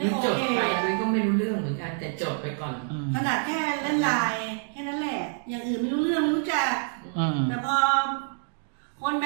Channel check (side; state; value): left; silent; 60 dB below the other